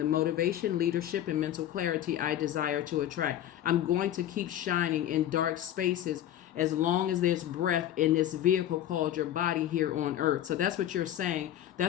motivation, leadership, and mental clarity I desire to attract. I'm going to keep shining in dark spaces as long as there's breath in this vehicle called your body here on earth. So that's what you're saying.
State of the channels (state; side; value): quieter; right; 11.9 dB